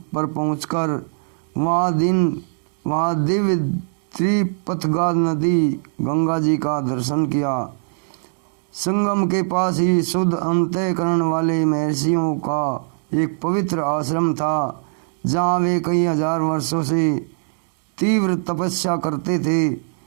पर पहुंचकर वहाँ दिव्य त्रिपथगा नदी गंगा जी का दर्शन किया। संगम के पास ही शुद्ध अंतःकरण वाले महर्षियों का एक पवित्र आश्रम था, जहाँ वे कई हजार वर्षों से तीव्र तपस्या करते थे।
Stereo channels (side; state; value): left; silent; 65 dB below the other